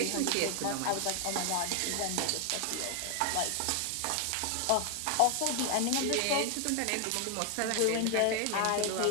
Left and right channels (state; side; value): different; both; correlation 0.00